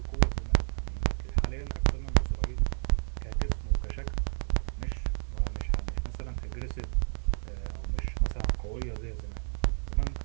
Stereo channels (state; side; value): silent; left; 57 dB below the other